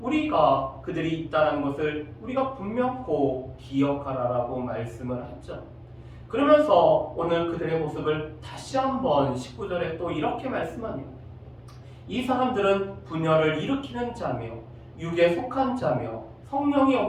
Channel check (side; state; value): both; identical; correlation 1.00